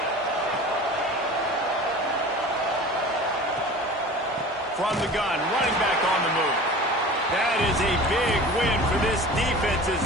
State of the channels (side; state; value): both; normal; correlation 0.39